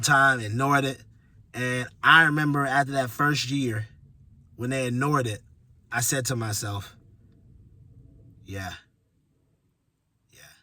time, ignored it. And I remember after that first year, when they ignored it, I said to myself, yeah.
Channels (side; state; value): both; identical; correlation 1.00